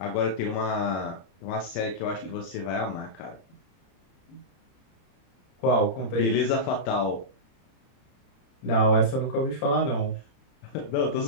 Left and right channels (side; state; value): right; late; 32 ms